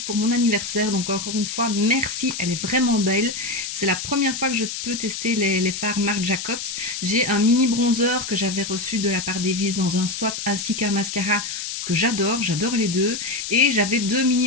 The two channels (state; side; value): noise; left; hiss, 6 dB below the sound